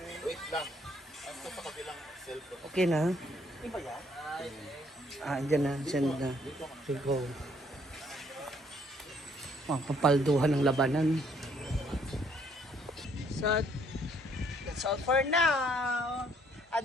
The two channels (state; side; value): normal; both; correlation 0.66